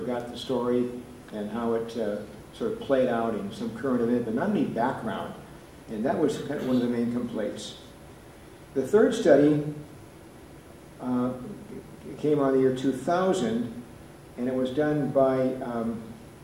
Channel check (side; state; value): both; identical; correlation 1.00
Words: got the story and how it sort of played out in some current event, but not any background. And that was kind of one of the main complaints. The third study came out in the year 2000, and it was done by